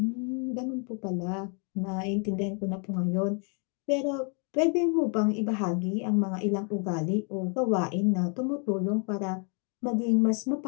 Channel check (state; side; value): quieter; right; 38.7 dB